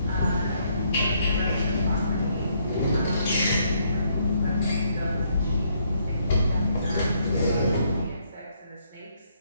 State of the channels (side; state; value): both; inverted; correlation -0.71